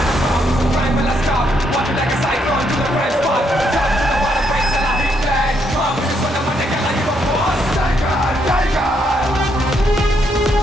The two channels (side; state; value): both; normal; correlation 0.75